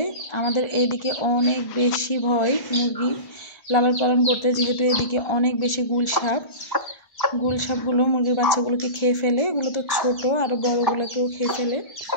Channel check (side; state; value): right; late; 1.4 ms